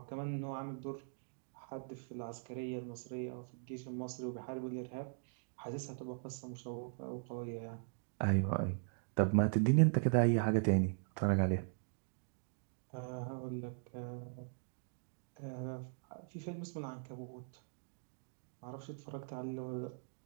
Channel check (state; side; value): silent; left; digital silence